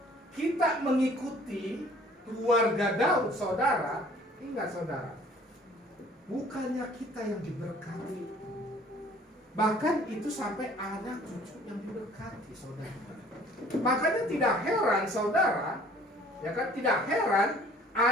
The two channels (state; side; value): normal; both; correlation 0.54